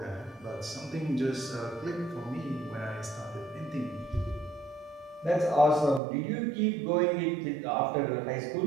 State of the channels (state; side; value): drops out; left; at 6.0 s